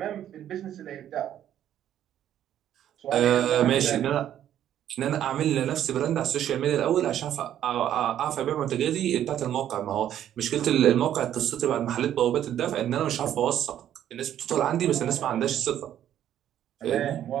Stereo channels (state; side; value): quieter; left; 10.9 dB